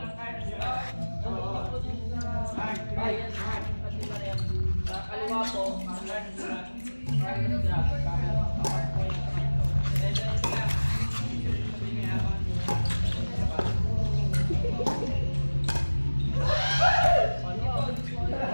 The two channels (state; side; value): inverted; both; correlation -1.00